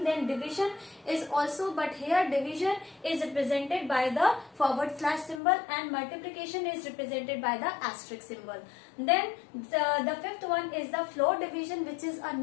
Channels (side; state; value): right; drops out; at 5.4 s